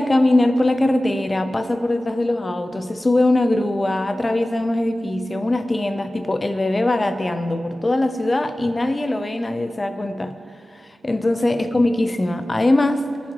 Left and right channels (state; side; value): normal; both; correlation 0.97